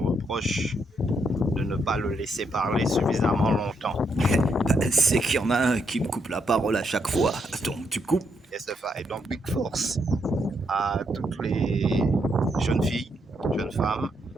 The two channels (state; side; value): normal; both; correlation 0.77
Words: de ne pas le laisser parler suffisamment longtemps. C'est qu'il y en a un qui me coupe la parole à chaque fois, donc tu coupes. Et donc big force à toutes les jeunes filles, jeunes femmes,